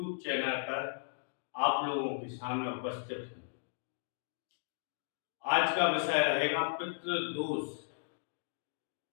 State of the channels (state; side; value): silent; right; digital silence